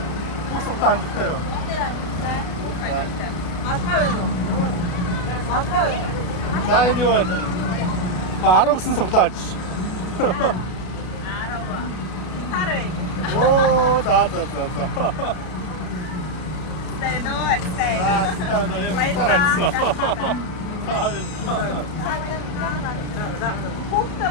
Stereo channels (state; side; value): late; right; 33 ms